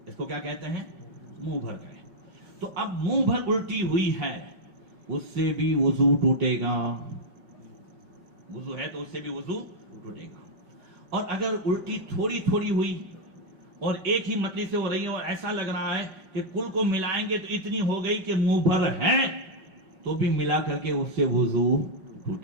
اس کو کیا کہتے ہیں؟ منہ بھر قے. تو اب منہ بھر الٹی ہوئی ہے، اس سے بھی وضو ٹوٹے گا. وضو ہے تو اس سے بھی وضو ٹوٹے گا. اور اگر الٹی تھوڑی تھوڑی ہوئی اور ایک ہی متلی سے ہو رہی ہے اور ایسا لگ رہا ہے کہ کل کو ملائیں گے تو اتنی ہو گئی کہ منہ بھر ہے، تو بھی ملا کر کے اس سے وضو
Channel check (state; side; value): late; left; 5.3 ms